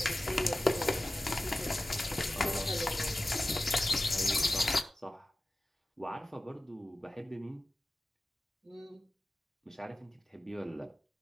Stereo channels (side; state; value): both; normal; correlation 0.94